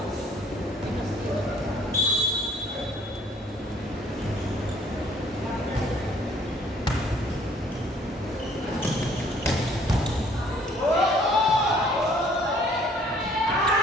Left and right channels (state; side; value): normal; both; correlation 0.59